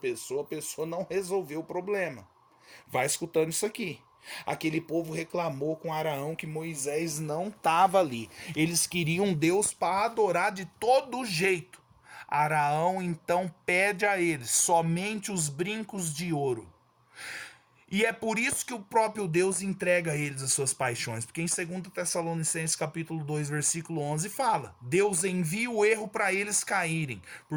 a pessoa não resolveu o problema. Vai escutando isso aqui. Aquele povo reclamou com Araão que Moisés não estava ali. Eles queriam Deus para adorar de todo jeito. Araão então pede a eles somente os brincos de ouro. E é por isso que o próprio Deus entrega a eles as suas paixões. Porque em 2 Tessalonicenses capítulo 2, versículo 11 fala: Deus envia o erro para eles caírem,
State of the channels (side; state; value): both; identical; correlation 1.00